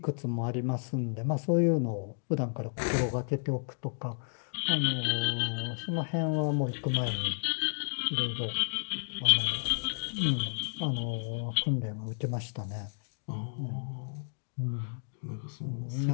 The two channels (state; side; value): silent; right; digital silence